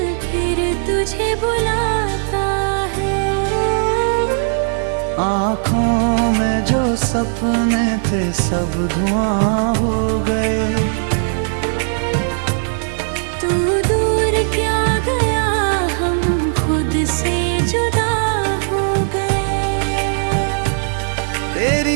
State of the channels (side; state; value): left; silent; 57 dB below the other